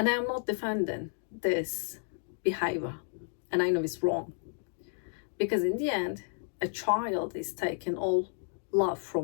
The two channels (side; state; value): right; silent; digital silence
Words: I am not defending this behavior. And I know it's wrong. Because in the end, a child is taking all love